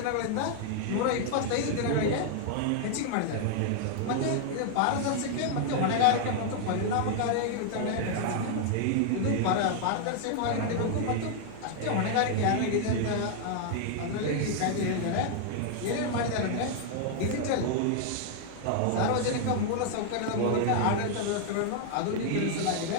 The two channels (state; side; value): different; both; correlation 0.00